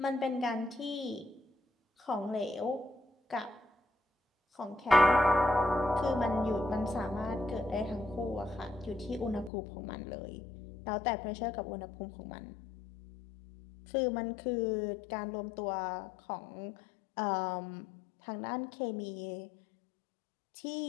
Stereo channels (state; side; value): drops out; right; at 9.5 s